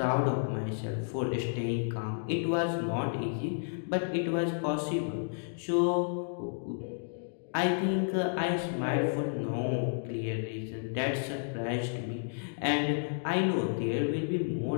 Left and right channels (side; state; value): right; silent; digital silence